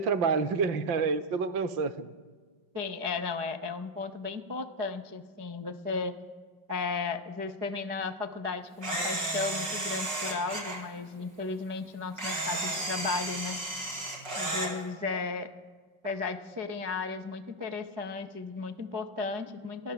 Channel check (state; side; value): late; left; 5.3 ms